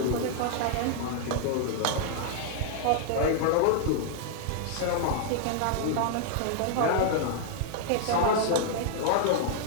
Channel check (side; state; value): both; different; correlation -0.01